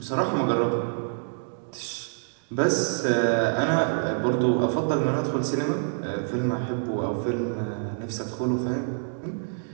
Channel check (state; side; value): silent; left; digital silence